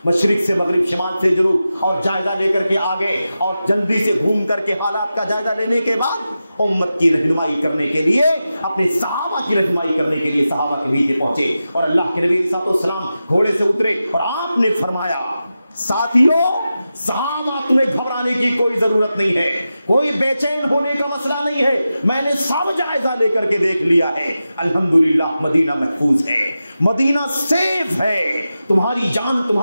مشرق سے مغرب، شمال سے جنوب، اور جائزہ لے کر کے آگے، اور جلدی سے گھوم کر کے حالات کا جائزہ لینے کے بعد امت کی رہنمائی کرنے کے لیے، اپنے صحابہ کی رہنمائی کرنے کے لیے صحابہ کے بیچ پہنچے، اور اللہ کے نبی صلی اللہ علیہ وسلم گھوڑے سے اترے اور آپ نے فرمایا، ساتھیوں، صحابہ تمہیں گھبرانے کی کوئی ضرورت نہیں ہے، کوئی بے چین ہونے کا مسئلہ نہیں ہے، میں نے سب جائزہ لے کر کے دیکھ لیا ہے، الحمدللہ مدینہ محفوظ ہے، مدینہ سیف ہے، تمہاری جان،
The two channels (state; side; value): inverted; both; correlation -0.92